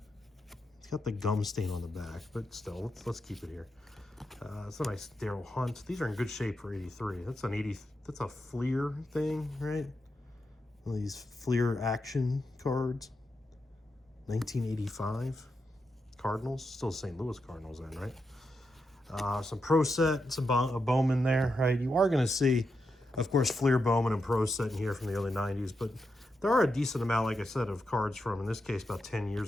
it's got the gum stain on the back, but still, let's keep it here. It's a nice Daryl Hunt. These are in good shape for 83. That's a Fleer thing, right? One of these Fleer action cards. 1985. Cardinals, still St. Louis Cardinals then, right? Some Pro Set, some Bowman there, right? You are going to see, of course, Fleer, Bowman, and Pro Set in here from the early 90s, but there are a decent amount, like I said, of cards from, in this case, about 10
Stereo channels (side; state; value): both; normal; correlation 0.85